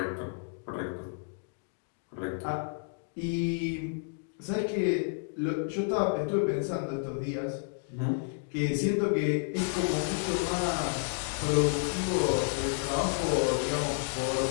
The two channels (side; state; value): right; silent; digital silence